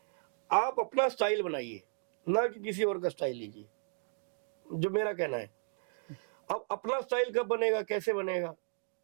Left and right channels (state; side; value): silent; left; digital silence